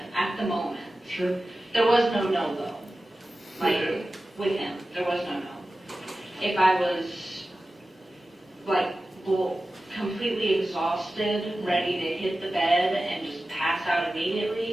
at the moment. Sure. There was no no, though. With him, there was no no. If I was, completely exhausted, ready to hit the bed and just pass out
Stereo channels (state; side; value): normal; both; correlation 0.95